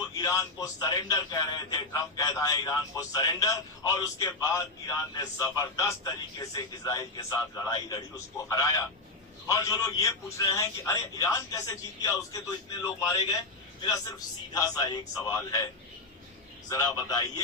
ईरान को सरेंडर कह रहे थे। ट्रंप कहता है ईरान को सरेंडर, और उसके बाद ईरान ने जबरदस्त तरीके से इजराइल के साथ लड़ाई लड़ी, उसको हराया। और जो लोग ये पूछ रहे हैं कि अरे ईरान कैसे जीत गया, उसके तो इतने लोग मारे गए, मेरा सिर्फ सीधा सा एक सवाल है, जरा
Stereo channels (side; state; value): right; quieter; 3.2 dB